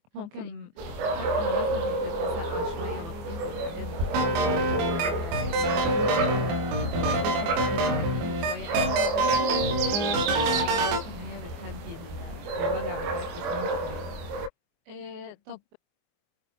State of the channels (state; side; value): late; left; 24 ms